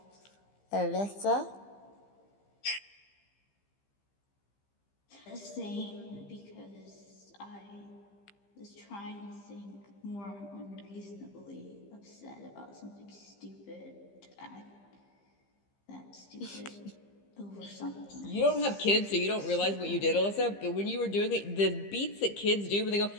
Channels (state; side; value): late; right; 15 ms